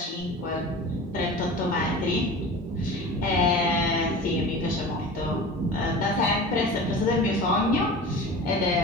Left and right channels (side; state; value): both; normal; correlation 0.35